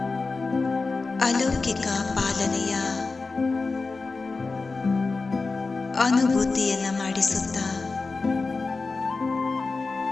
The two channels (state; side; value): quieter; right; 3.9 dB